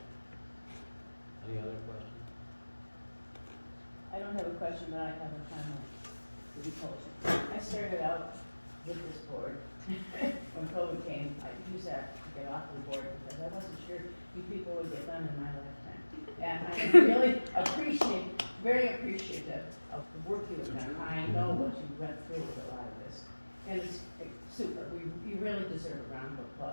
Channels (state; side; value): inverted; both; correlation -1.00